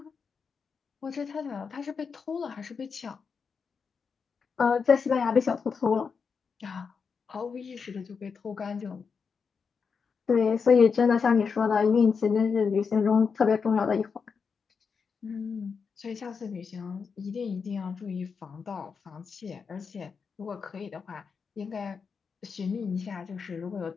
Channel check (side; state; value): right; quieter; 5.7 dB